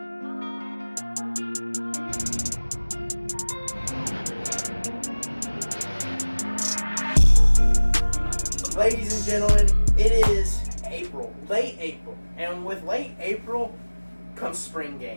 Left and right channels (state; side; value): inverted; both; correlation -1.00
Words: Ladies and gentlemen, it is April, late April, and with late April comes spring